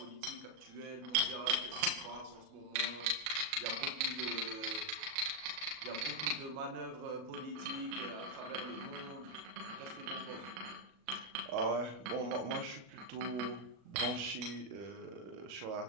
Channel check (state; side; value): late; left; 38 ms